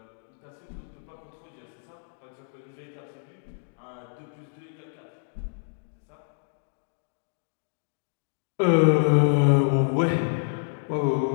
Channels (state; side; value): silent; right; digital silence